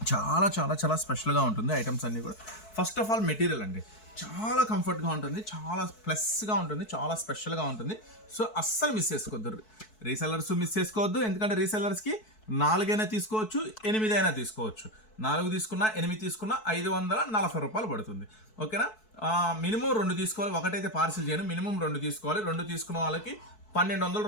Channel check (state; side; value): late; right; 4.6 ms